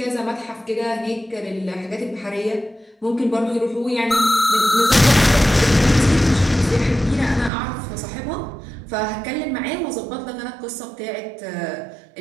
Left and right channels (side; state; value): left; drops out; at 7.5 s